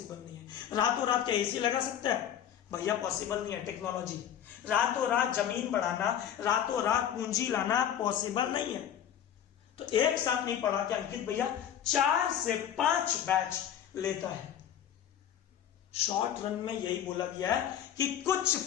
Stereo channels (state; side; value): quieter; right; 9.9 dB